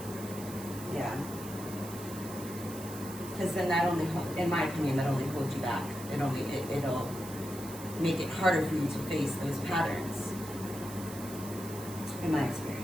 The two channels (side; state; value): right; noise; hiss, 13 dB below the sound